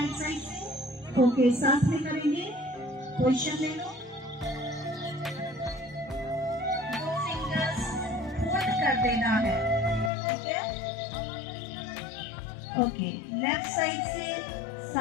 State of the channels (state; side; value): drops out; right; at 10.1 s